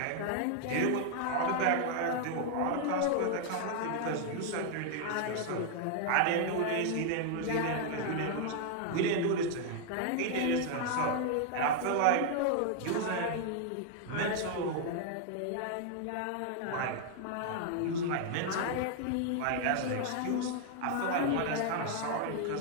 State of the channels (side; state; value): both; different; correlation 0.00